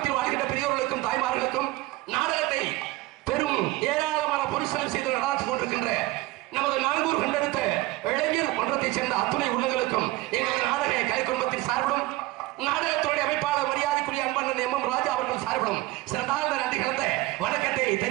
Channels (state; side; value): quieter; left; 18.7 dB